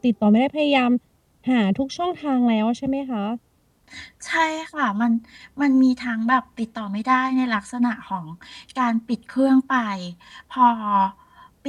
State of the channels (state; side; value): identical; both; correlation 1.00